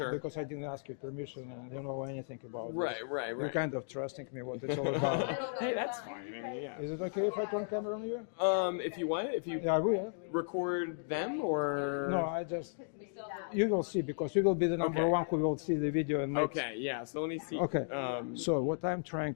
Because I didn't ask you permission and you don't know anything about Right. this. You're kind of trusting me what it's all about. Hey, that's fine. Yeah. Is it okay if I turn camera on you? If you want, if you Yeah, I will. record them or No, you will see because you will be the number Okay. one who will see the video and make. Okay. Yeah. So let me see. Okay. So what I'm trying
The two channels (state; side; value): silent; right; digital silence